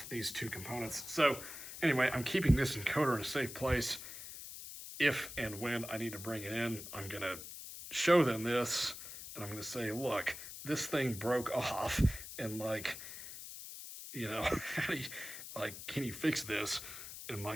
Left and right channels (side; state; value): left; noise; hiss, 11 dB below the sound